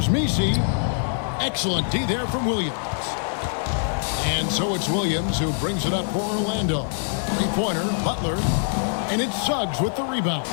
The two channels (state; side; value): silent; right; digital silence